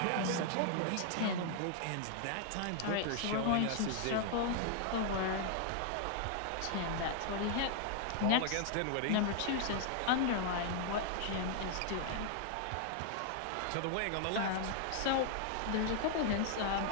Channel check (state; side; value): different; both; correlation -0.01